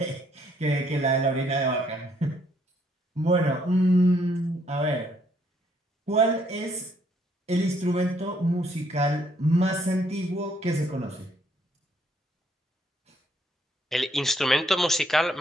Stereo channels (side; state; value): both; normal; correlation 0.69